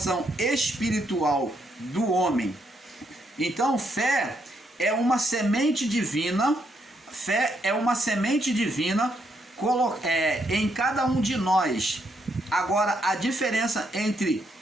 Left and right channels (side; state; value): both; normal; correlation 0.76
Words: espiritual do homem. Então, fé é uma semente divina, em cada um de nós. Agora, a diferença entre